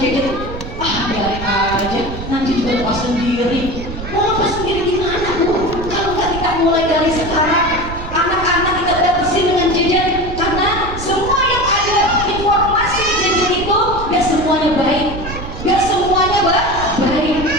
Biarin aja, nanti juga lepas sendiri. Mau lepas sendiri gimana, bu? Kalau nggak kita mulai dari sekarang, anak-anak kita batasi dengan gadget. Karena semua yang ada informasi gadget itu gak semuanya baik, gak semuanya baik,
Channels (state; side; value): noise; right; rumble, 9 dB below the sound